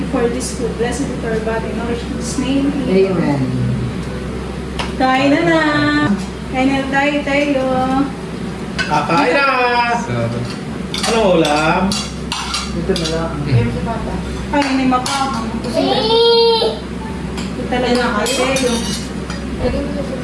for this food. Blessed is our body. Nourish in His name. Amen. Kain na na! Kain na tayo. Kakain na! Ano ulam? Ito na lang. Kain na mapahang. Ito talaga na kayo.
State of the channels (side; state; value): both; identical; correlation 1.00